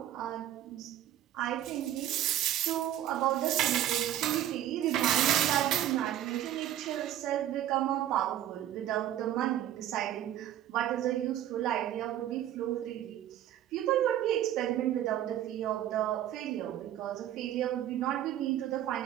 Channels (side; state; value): left; quieter; 12.1 dB